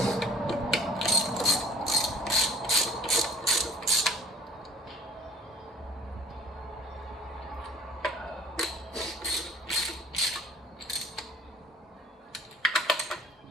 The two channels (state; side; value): normal; both; correlation 0.49